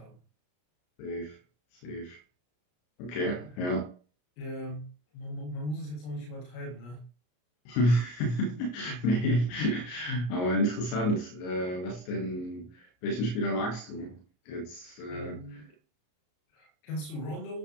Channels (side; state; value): right; late; 33 ms